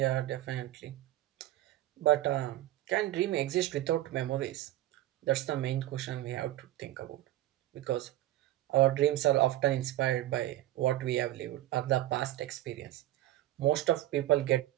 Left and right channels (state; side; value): quieter; left; 14.9 dB